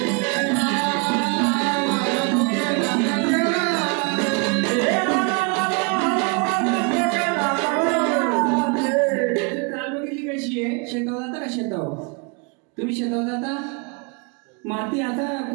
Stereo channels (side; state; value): left; quieter; 32.9 dB